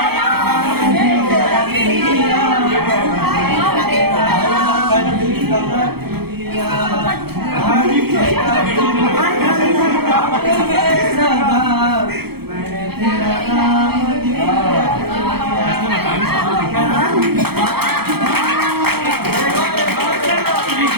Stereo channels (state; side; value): late; left; 0.96 ms